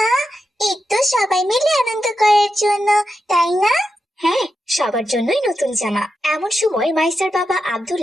ঈদ তো সবাই মিলে আনন্দ করার জন্য, তাই না? হ্যাঁ, সবার জন্যই নতুন জামা। এমন সময় মাইসার বাবা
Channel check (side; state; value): both; normal; correlation 0.88